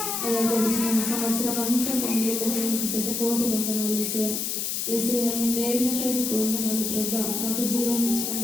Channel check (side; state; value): left; noise; hiss, 1 dB below the sound